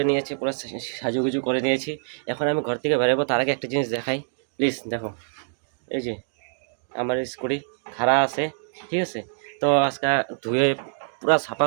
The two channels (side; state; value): left; silent; digital silence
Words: নিয়েছি, পুরো সাজুগুজু করে নিয়েছি। এখন আমি ঘর থেকে বেরোবো, তার আগে একটা জিনিস দেখাই প্লিজ। দেখো এই যে আমার স্কুটি খাড়া আছে, ঠিক আছে? তো আজকে ধুয়ে পুরো সাফা